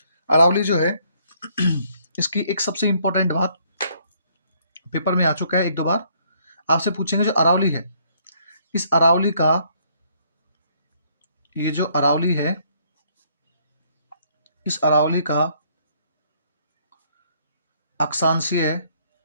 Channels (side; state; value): both; inverted; correlation -0.66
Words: अरावली जो है इसकी एक सबसे इंपॉर्टेंट बात पेपर में आ चुका है, एक दो बार आपसे पूछेंगे। जो अरावली है, इस अरावली का, ये जो अरावली है, इस अरावली का अक्षांशीय